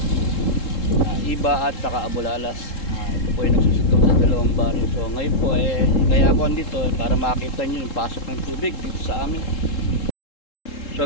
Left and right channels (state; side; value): late; right; 3.7 ms